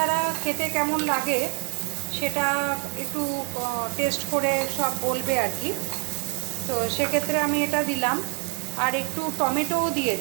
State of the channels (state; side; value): quieter; left; 36.7 dB